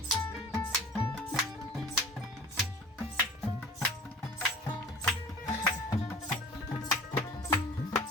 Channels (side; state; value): both; normal; correlation 0.45